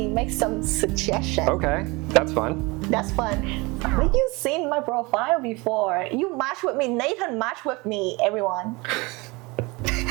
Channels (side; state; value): left; quieter; 25.1 dB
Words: make some suggestions. Okay, that's fun. That's fun. Have you seen my profile before? You match with me. Nathan match with me, everyone.